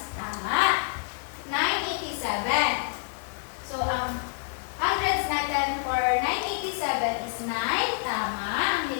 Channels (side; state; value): right; silent; digital silence